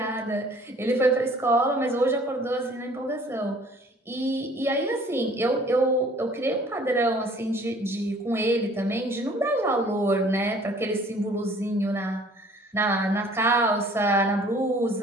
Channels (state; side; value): normal; both; correlation 0.54